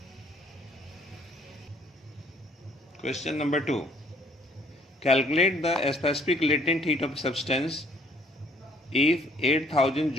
Question number 2, calculate the specific latent heat of substance if 8000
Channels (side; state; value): both; normal; correlation 0.61